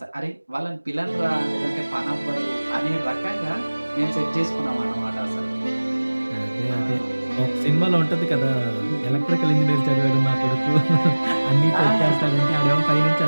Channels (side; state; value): both; inverted; correlation -1.00